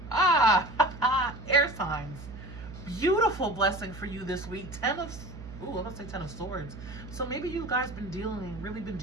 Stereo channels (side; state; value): right; noise; hum, 13 dB below the sound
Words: Ah, air signs. Beautiful blessing for you this week. I'm going to say 10 of Swords. So maybe you guys really been